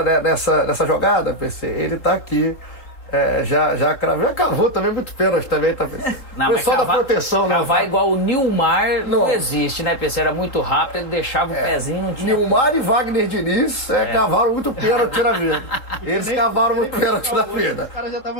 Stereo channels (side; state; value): right; late; 3.7 ms